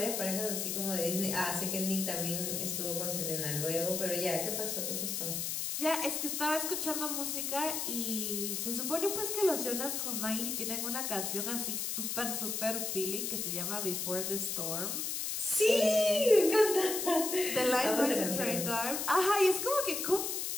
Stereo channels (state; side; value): noise; left; hiss, 2 dB below the sound